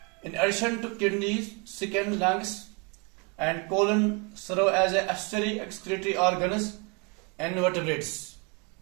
in addition to kidneys, skin, lungs and colon serve as a accessory excretory organs in vertebrates.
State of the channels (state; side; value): quieter; left; 32.4 dB